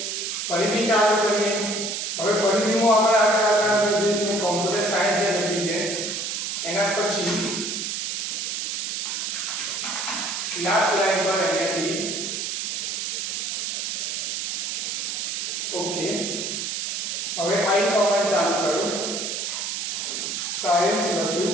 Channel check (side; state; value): right; noise; hiss, 2 dB below the sound